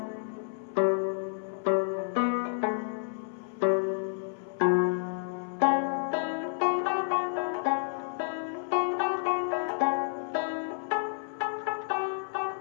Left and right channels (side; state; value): right; silent; 58 dB below the other